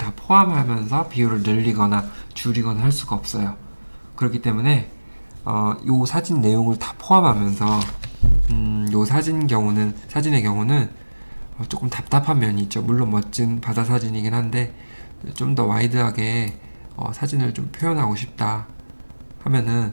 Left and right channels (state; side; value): inverted; both; correlation -1.00